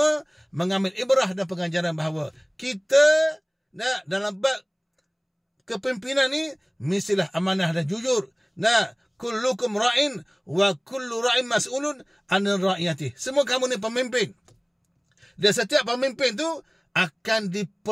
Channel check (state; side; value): identical; both; correlation 1.00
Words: mengambil ibrah dan pengajaran bahawa kita dalam bab kepimpinan ni mestilah amanah dan jujur. Kullukum ra'in wa kullu ra'in mas'ulun 'anil ra'iyati. Semua kamu ni pemimpin. Dan setiap pemimpin tu akan